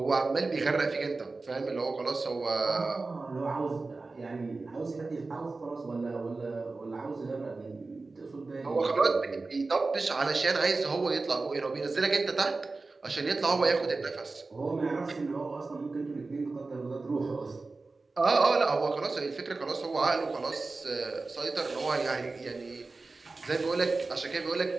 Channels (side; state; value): left; quieter; 3.7 dB